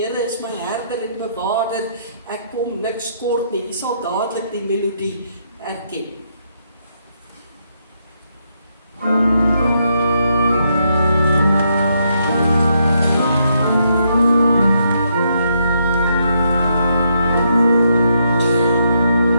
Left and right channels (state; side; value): inverted; both; correlation -0.77